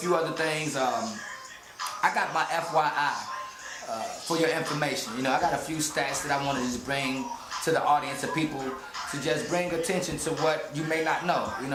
other things. I got my FYI for your information. I got a few stats that I want to just bring to the audience of people, to just bring attention to what you may not know,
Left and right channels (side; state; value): both; identical; correlation 1.00